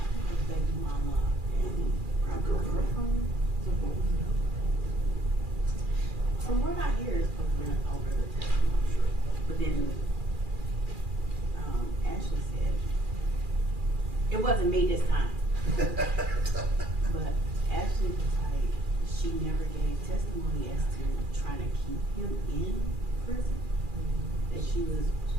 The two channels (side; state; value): left; late; 2.4 ms